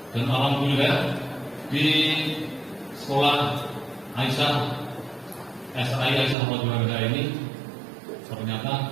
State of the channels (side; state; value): left; drops out; at 6.4 s